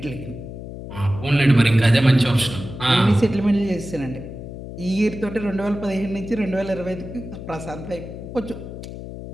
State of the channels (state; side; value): noise; left; hum, 11 dB below the sound